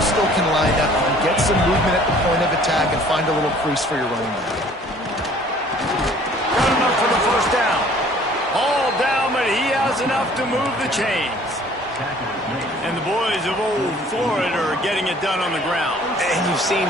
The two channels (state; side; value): normal; both; correlation 0.54